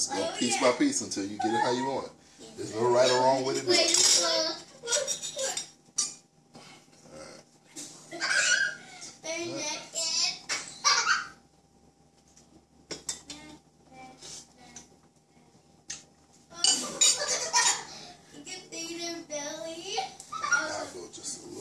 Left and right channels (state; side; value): identical; both; correlation 1.00